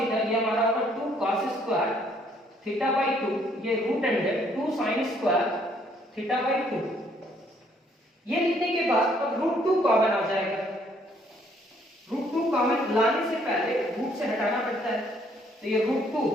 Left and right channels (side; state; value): both; normal; correlation 0.66